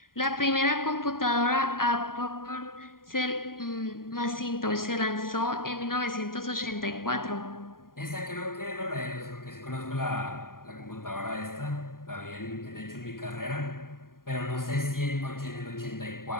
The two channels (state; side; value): late; right; 0.91 ms